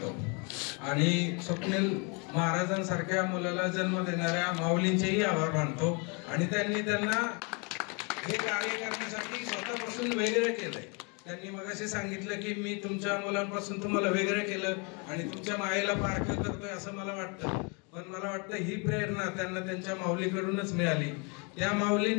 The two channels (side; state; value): right; quieter; 33.0 dB